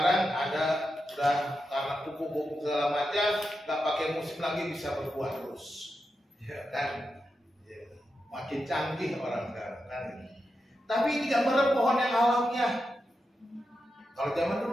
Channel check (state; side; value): normal; both; correlation 0.88